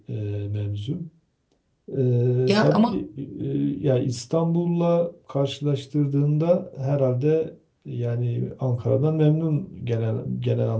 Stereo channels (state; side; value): identical; both; correlation 1.00